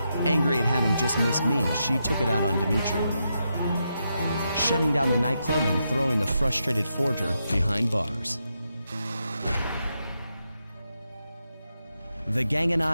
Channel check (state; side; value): inverted; both; correlation -0.84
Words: Angry at having just missed me, she took it out on Dimitri, shutting down the nightclub and throwing the frustrated forger behind bars. The gang and